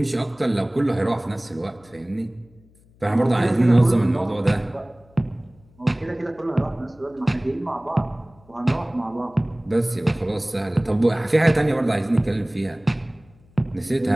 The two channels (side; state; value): left; noise; hum, 29 dB below the sound